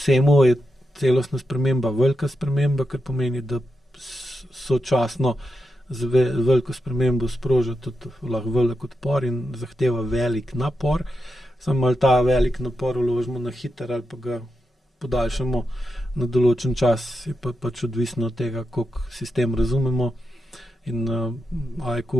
je celostna sprememba velika sprememba, kar pomeni, da sočasno z veliko spremembo sproža tudi lahko velik odpor in zahteva velik napor. Samo ali ta velik napor vložimo na hiter ali pa ga podaljšamo na določen čas, je pač odvisno od tega, koliko sistem razumemo. In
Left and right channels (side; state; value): both; normal; correlation 0.87